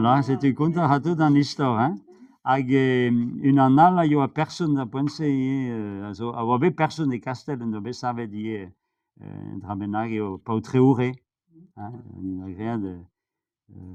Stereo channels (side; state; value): both; identical; correlation 1.00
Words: c'est un conte à tout dans l'histoire, hein. Hag une annale, il y a personne à penser, also, a obe personne de castel, no be savet die, drabenag eo pautreure, hein, une agréa de,